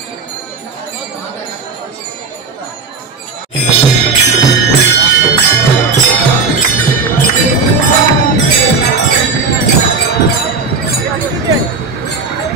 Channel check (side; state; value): left; quieter; 4.5 dB